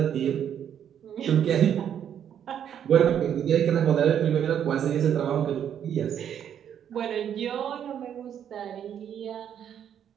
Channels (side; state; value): left; quieter; 9.2 dB